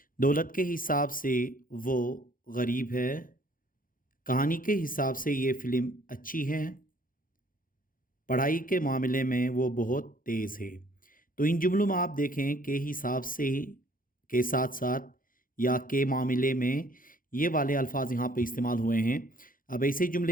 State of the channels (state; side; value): late; right; 0.40 ms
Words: दौलत के हिसाब से वो गरीब है, कहानी के हिसाब से ये फ़िल्म अच्छी है, पढ़ाई के मामले में वो बहुत तेज़ है। तो इन जुमलों में आप देखें के हिसाब से के साथ-साथ या के मामले में ये वाले अल्फ़ाज़ यहाँ पे इस्तेमाल हुए हैं। अब ऐसे